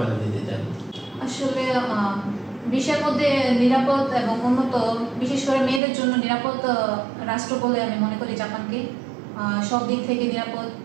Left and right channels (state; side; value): drops out; left; at 5.8 s